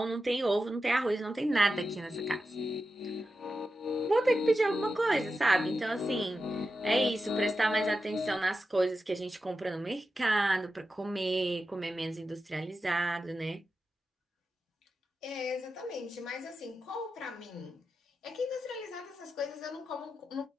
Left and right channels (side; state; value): both; normal; correlation 0.91